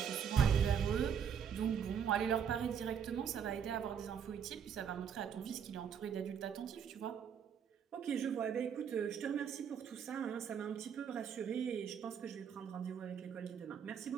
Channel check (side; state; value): left; quieter; 7.8 dB